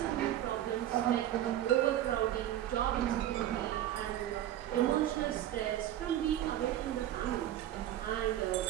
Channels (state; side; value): quieter; left; 12.4 dB